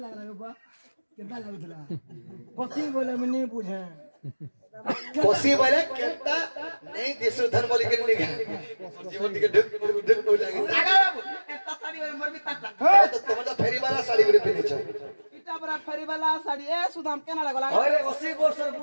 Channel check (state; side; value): inverted; both; correlation -1.00